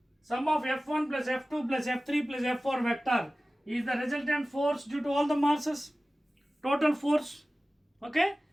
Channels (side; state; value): both; normal; correlation 0.96